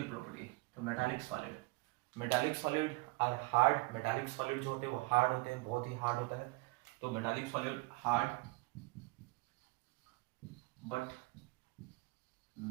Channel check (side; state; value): left; quieter; 24.7 dB